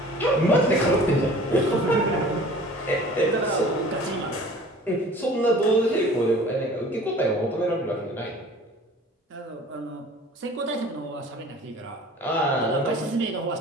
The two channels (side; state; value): both; normal; correlation 0.46